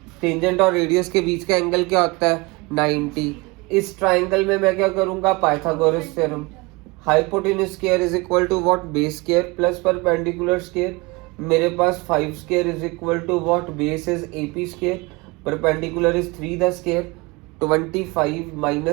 टेंजेंट और रेडियस के बीच का एंगल क्या होता है 90। इस ट्राइंगल में मैं क्या करूंगा Pythagoras theorem, hypotenuse square is equal to what base square plus perpendicular square. मेरे पास 5 square is equal to what base is AP square, perpendicular is 3 the square. 25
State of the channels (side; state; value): left; quieter; 25.3 dB